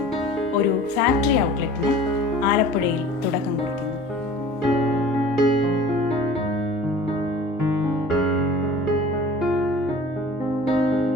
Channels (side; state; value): both; normal; correlation 0.43